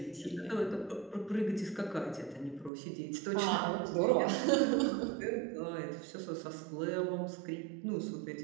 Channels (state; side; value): drops out; left; at 2.7 s